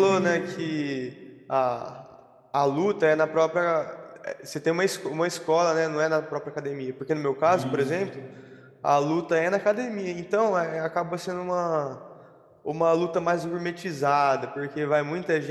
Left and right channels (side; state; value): both; identical; correlation 1.00